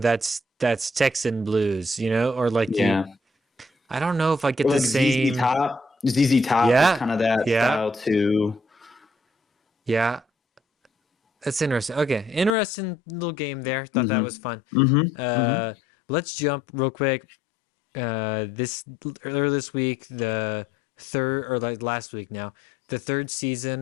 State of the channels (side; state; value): right; drops out; at 12.6 s